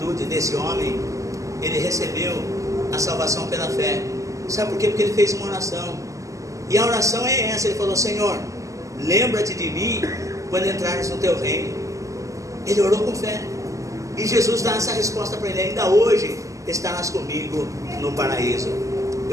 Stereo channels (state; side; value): late; left; 0.16 ms